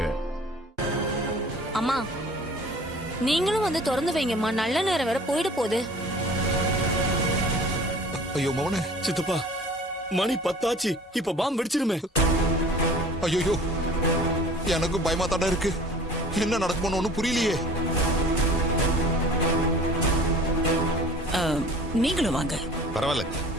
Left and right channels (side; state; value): both; normal; correlation 0.46